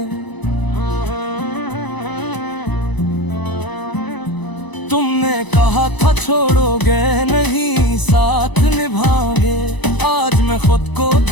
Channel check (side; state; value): right; late; 1.0 ms